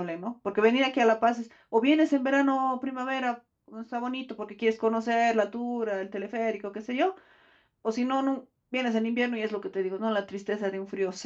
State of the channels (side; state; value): both; identical; correlation 1.00